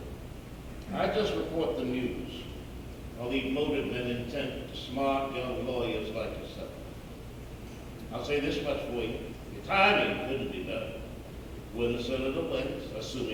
I just report the news. I'll leave motive and intent to smart young lawyers like yourself. I'll say this much for you. Your timing couldn't be better. When the senator wins,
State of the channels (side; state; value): both; identical; correlation 1.00